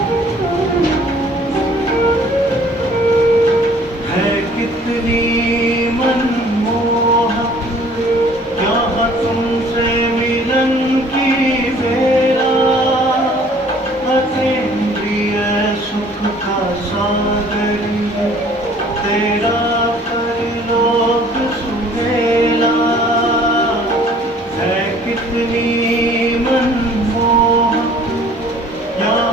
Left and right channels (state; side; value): normal; both; correlation 0.54